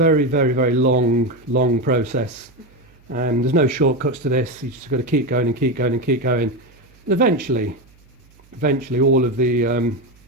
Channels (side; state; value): right; noise; hum, 29 dB below the sound